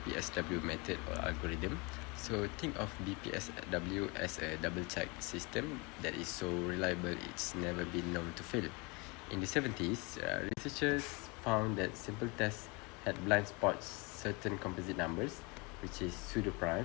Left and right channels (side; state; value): right; quieter; 28.4 dB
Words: method or algorithm. So think of BPSW as a double check system that is so reliable it's never been known to fail. In the 70s, researchers found that simple tests had blind spots certain composite numbers, which is